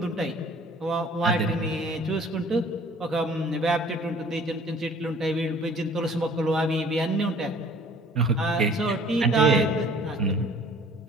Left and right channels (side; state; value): both; normal; correlation 0.52